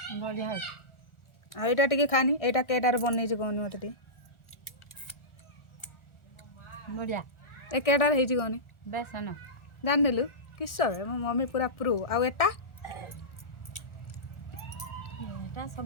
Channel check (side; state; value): right; late; 1.4 ms